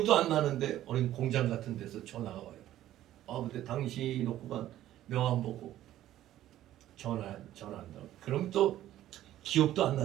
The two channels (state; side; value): quieter; left; 13.3 dB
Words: 안 나는데 어린 공장 같은 데서 전화가 와요. 근데 당신이 놓고 간 명함 보고 전화한다고. 그럼 또 기억도 안